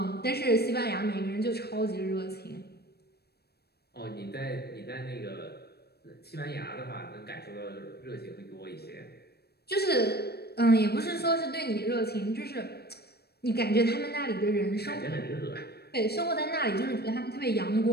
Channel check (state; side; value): late; right; 0.47 ms